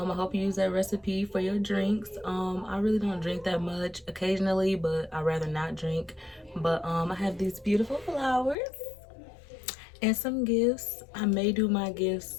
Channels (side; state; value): right; drops out; at 8.6 s